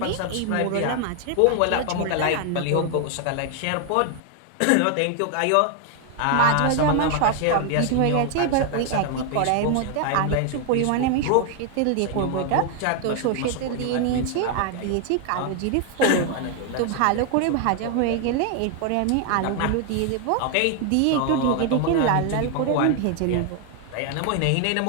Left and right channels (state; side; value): different; both; correlation 0.00